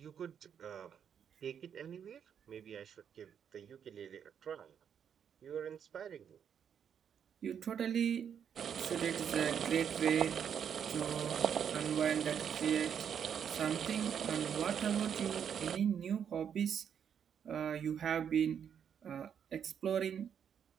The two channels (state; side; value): quieter; left; 8.1 dB